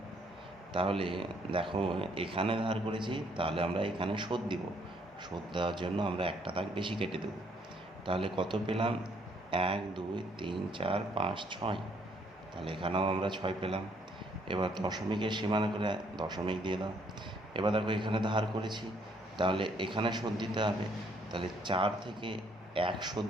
তাহলে দেখো এখানে ধার করেছি, তাহলে আমরা এখানে শোধ দিব। শোধ দেওয়ার জন্য আমরা একটা দাগ বেশি কেটে দেব। তাহলে কত পেলাম? 1 2 3 4 5 6। তাহলে এখানেও আমরা 6 পেলাম। এবার দশমিকের সীমানা করে দশমিক দিয়ে দাও। এবার দেখো এখানে ধার করেছি, তাহলে এখানে শোধ দিতে হবে। তাহলে 4 থেকে 1 শোধ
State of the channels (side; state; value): both; normal; correlation 0.67